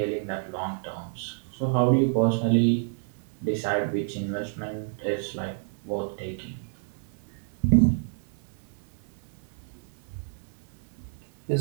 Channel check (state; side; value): silent; left; digital silence